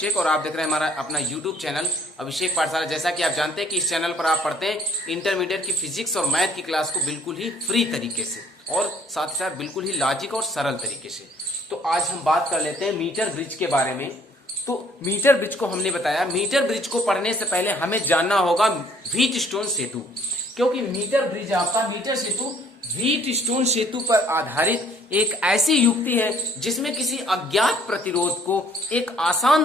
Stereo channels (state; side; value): normal; both; correlation 0.59